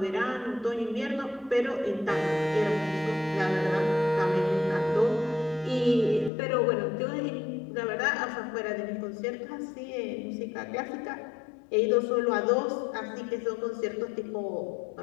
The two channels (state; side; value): drops out; right; at 6.3 s